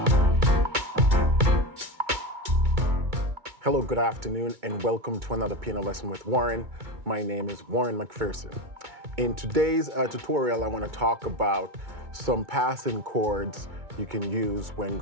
good afternoon, and welcome to another piano lesson with Warren. My name is Warren McPherson. In today's tutorial, I want to talk about some passing chords you can use when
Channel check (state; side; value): late; left; 2.2 ms